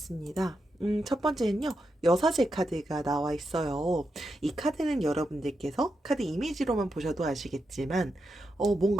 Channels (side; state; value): both; normal; correlation 0.86